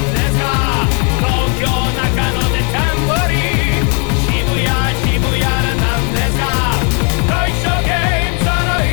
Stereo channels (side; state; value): right; quieter; 35.6 dB